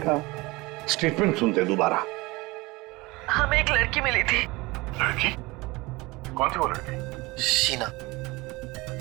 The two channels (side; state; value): left; quieter; 22.6 dB